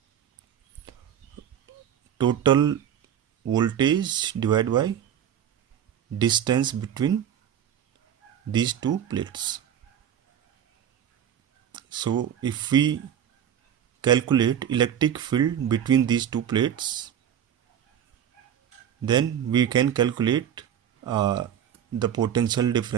total voltage divided by distance between these two plates. So if we calculate electric field between these two plates, then we can calculate the potential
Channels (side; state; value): left; quieter; 9.4 dB